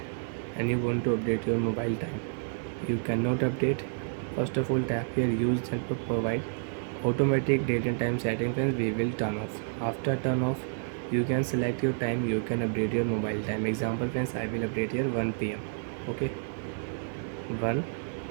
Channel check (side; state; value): left; silent; digital silence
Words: and you want to update your mobile time. You cannot update. First of all, tap here use and provide automatic date and time setting. Friends, we will turn off. After turn off, you can select your time, you can update your mobile time. Example friends, I will update here 1 p.m. okay, 1